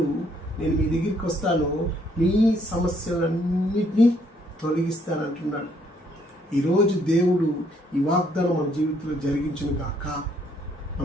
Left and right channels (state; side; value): normal; both; correlation 0.68